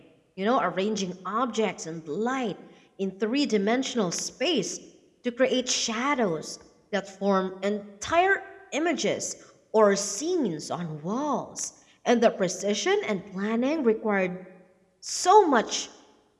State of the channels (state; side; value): identical; both; correlation 1.00